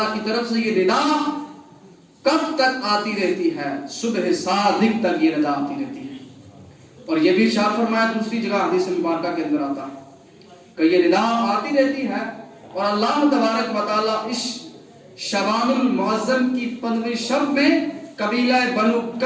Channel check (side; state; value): both; identical; correlation 1.00